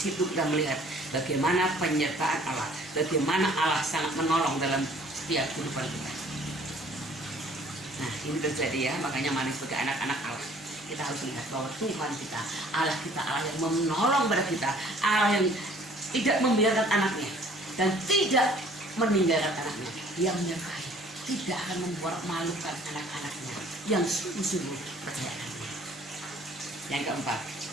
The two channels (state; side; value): normal; both; correlation 0.55